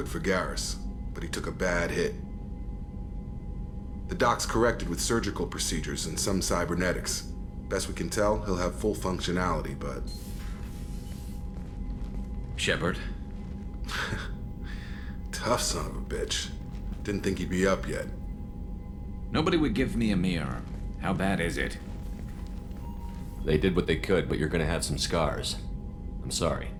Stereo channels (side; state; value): both; identical; correlation 1.00